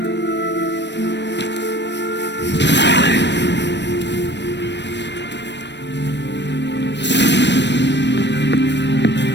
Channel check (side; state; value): right; late; 0.51 ms